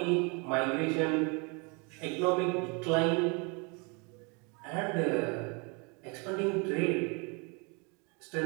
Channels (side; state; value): left; quieter; 31.6 dB